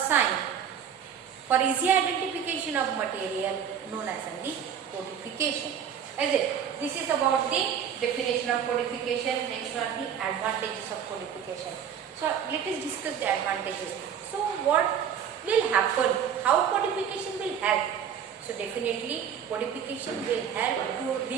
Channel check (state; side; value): quieter; left; 8.3 dB